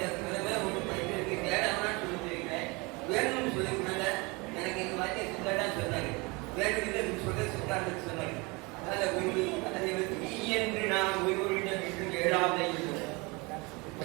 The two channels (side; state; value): left; quieter; 26.9 dB